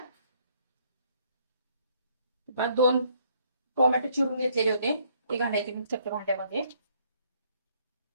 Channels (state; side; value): inverted; both; correlation -0.66